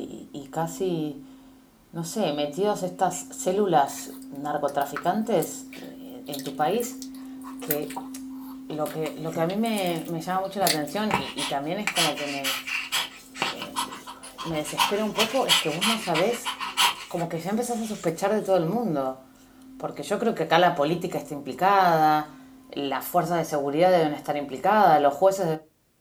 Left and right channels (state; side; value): identical; both; correlation 1.00